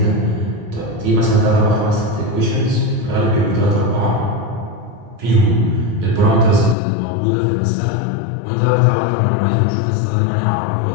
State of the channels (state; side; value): drops out; right; at 6.8 s